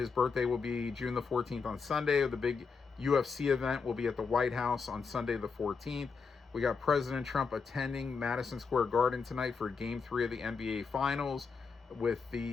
birthday will be June the 14th on Sunday. The big UFC event will be at the White House on Sunday the 14th. We got President Trump attending Madison Square Garden tonight for Game 3 of the NBA Finals with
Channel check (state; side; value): quieter; right; 5.2 dB